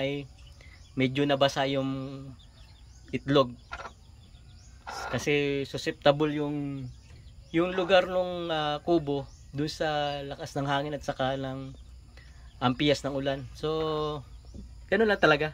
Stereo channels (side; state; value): both; identical; correlation 1.00